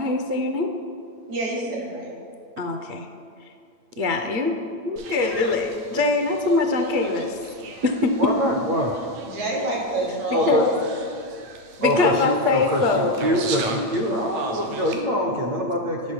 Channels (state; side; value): late; left; 8.8 ms